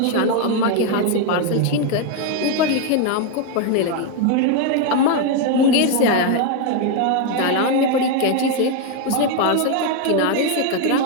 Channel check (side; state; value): both; different; correlation 0.01